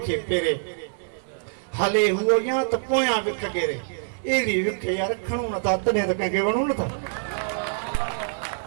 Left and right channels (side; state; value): left; silent; digital silence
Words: फेरे हले हुओ या तो पोया विख गेरे एरी विख यार खणू न था तने तक के वणू न था